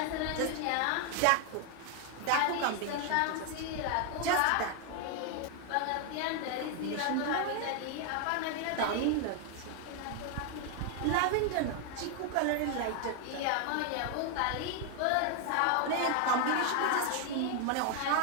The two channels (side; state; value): both; different; correlation 0.00